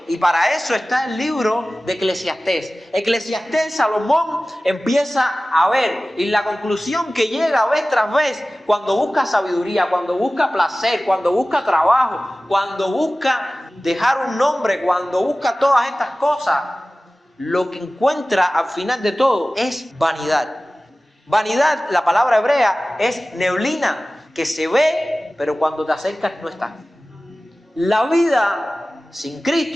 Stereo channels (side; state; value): both; normal; correlation 0.97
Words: Y para eso está el libro de Eclesiastés. Eclesiastés, Salomón empieza a ver, y la conclusión que llega vez tras vez, cuando busca sabiduría, cuando busca placer, cuando busca trabajo, cuando busca dejar un nombre, cuando busca todas estas cosas, lo que encuentra al final de todo es vanidad. Vanidad, la palabra hebrea, es neblina, que se ve, pero cuando te acercas no está. La vida sin